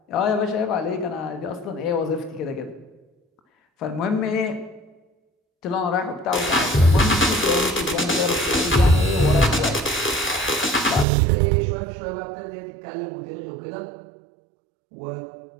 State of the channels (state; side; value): drops out; left; at 11.1 s